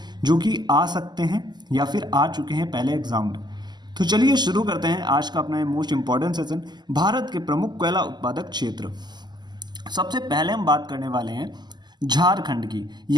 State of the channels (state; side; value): late; left; 0.21 ms